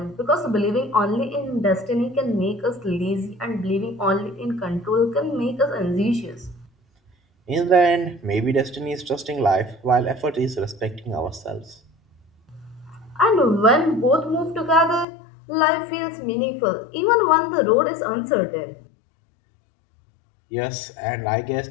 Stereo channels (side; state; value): right; drops out; at 15.1 s